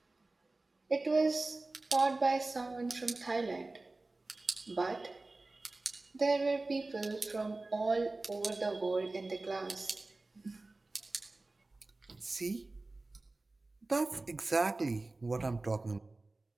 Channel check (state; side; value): quieter; left; 3.2 dB